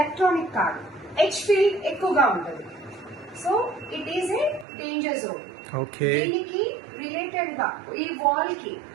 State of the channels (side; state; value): left; drops out; at 4.7 s